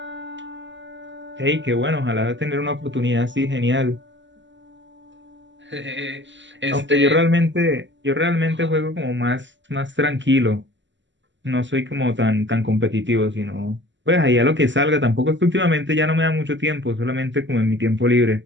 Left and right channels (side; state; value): left; late; 0.54 ms